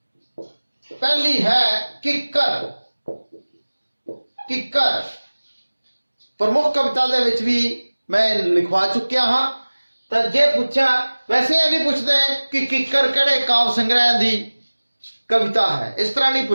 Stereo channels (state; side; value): inverted; both; correlation -1.00